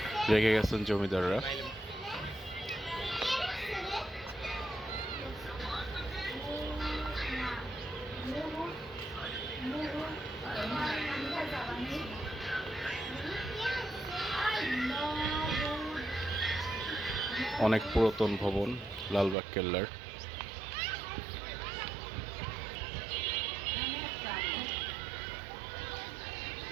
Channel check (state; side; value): drops out; left; at 19.4 s